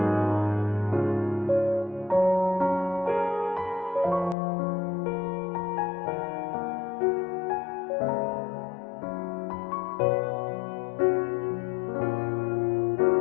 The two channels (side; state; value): right; drops out; at 4.4 s